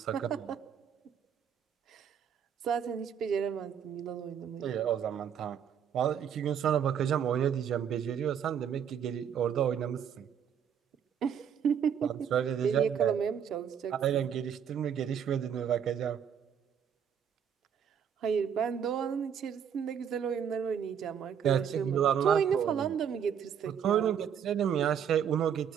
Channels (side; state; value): left; quieter; 8.3 dB